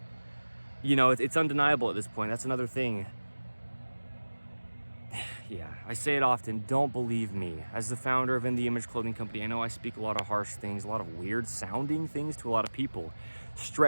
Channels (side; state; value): both; inverted; correlation -1.00